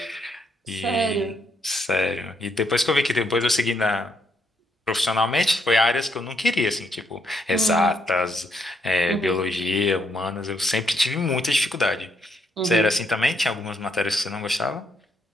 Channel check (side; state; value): both; normal; correlation 0.75